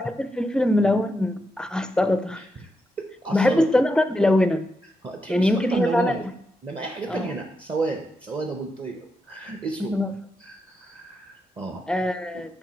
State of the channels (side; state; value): both; normal; correlation 0.85